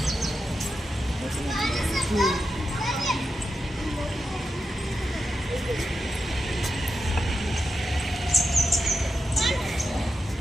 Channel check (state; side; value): normal; both; correlation 0.88